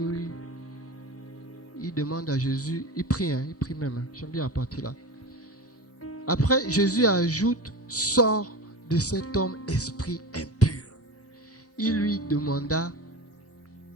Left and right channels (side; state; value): both; normal; correlation 0.29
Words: il demande à Jésus, il prie même. J'aime bien la partie là. Après, Jésus ajoute, sors de cet homme esprit impur. Il lui demanda,